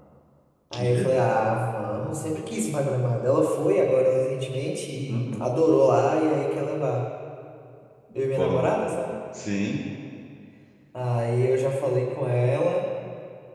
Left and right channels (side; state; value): both; identical; correlation 1.00